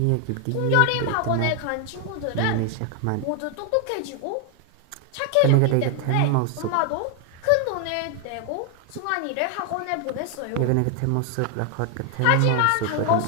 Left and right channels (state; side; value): different; both; correlation 0.00